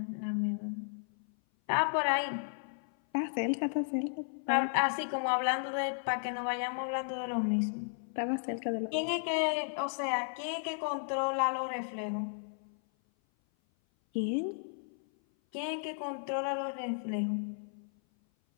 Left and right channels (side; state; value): right; silent; 55 dB below the other